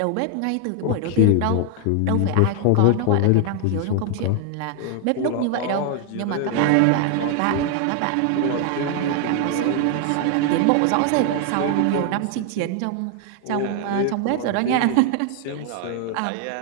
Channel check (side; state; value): both; different; correlation 0.00